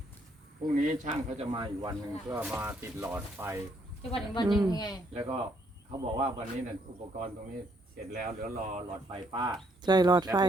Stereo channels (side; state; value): both; normal; correlation 0.71